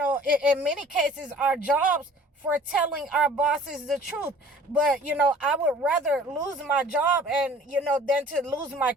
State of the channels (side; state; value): both; normal; correlation 0.49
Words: many cases, our jobs for telling our bosses the truth. But, I would rather lose my job and, than to lose my